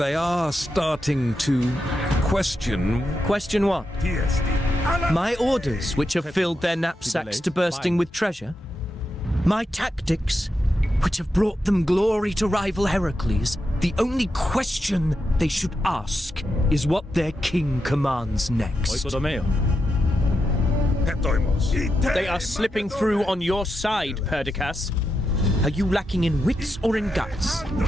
are starting to question. Question what? My orders, which have filled their knapsacks to bursting with treasure? My tactics, which have brought them glory to rival Heracles? The only question they should ask is what their king commands next. Oikodomeo. They are slipping through on your side, Perdiccas. Are you lacking in wits or in guts?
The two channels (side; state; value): both; normal; correlation 0.86